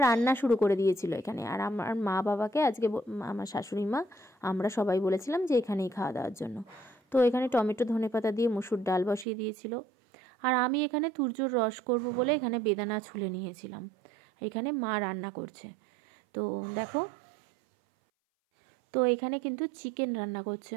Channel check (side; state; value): left; drops out; at 9.2 s